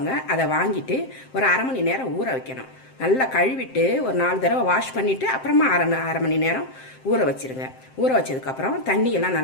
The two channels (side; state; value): right; late; 7.6 ms